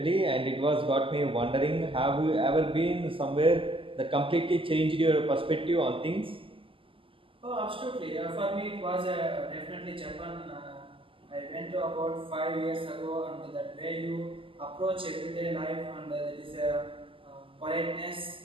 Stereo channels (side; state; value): left; late; 0.25 ms